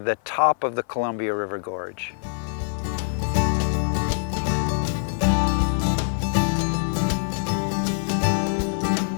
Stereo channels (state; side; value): silent; right; 56 dB below the other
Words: top of the Columbia River Gorge.